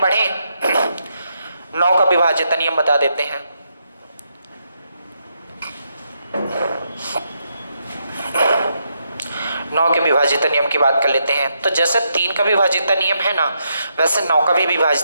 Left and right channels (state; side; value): inverted; both; correlation -0.80